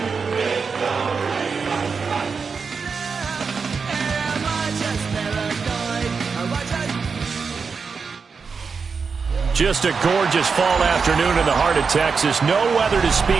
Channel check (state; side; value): quieter; left; 5.3 dB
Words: Just a gorgeous fall afternoon in the heart of Texas. No weather to